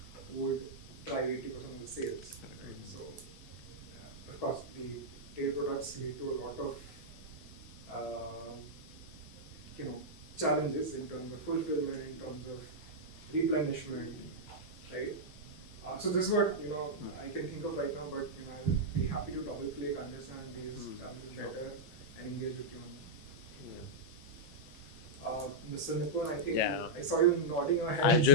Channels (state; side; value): normal; both; correlation -0.07